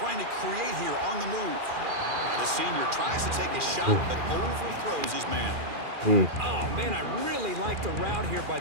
to create here on the move. Now the senior tries to take a shot, but overthrows his man. Oh, man, I really like the route here by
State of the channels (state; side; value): late; left; 2.4 ms